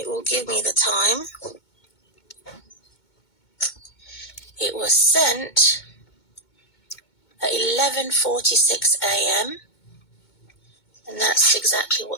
will give me the time. It was sent at 11:46 a.m. and that's exactly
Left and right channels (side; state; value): right; late; 2.2 ms